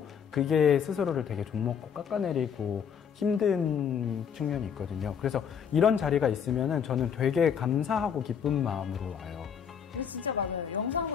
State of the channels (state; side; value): quieter; right; 7.6 dB